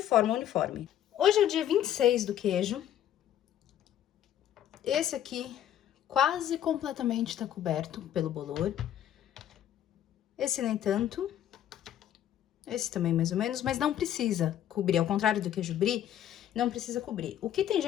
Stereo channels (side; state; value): right; quieter; 11.1 dB